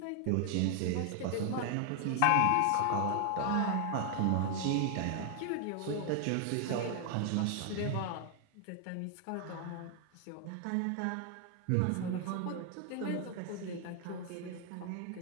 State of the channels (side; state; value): both; different; correlation 0.00